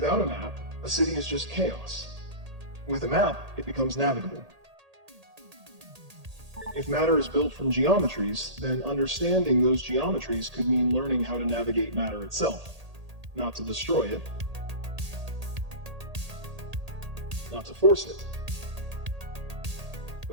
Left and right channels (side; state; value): left; late; 1.8 ms